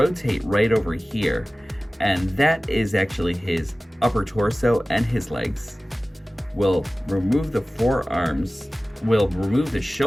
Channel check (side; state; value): both; normal; correlation 0.97